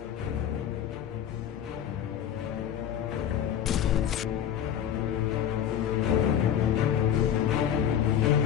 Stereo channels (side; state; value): right; quieter; 9.6 dB